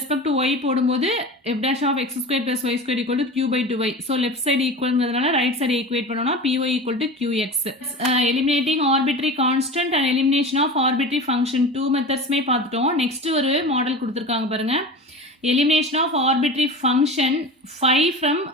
to y போடும்போது f dash of x square plus y square equal to q/2y. So left side equalங்கிறதுனால right side equate பண்ணோம்னா py equal to qx. Eliminating arbitrary constant and elimination of arbitrary function 2 methodsமே பார்த்துட்டோம். நெக்ஸ்ட் ஒரு மாடல் கொடுத்துருக்காங்க பாருங்க. Elimination of arbitrary function phi from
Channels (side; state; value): both; normal; correlation 0.32